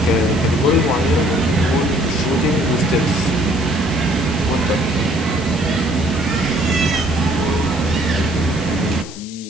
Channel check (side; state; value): left; noise; hiss, 16 dB below the sound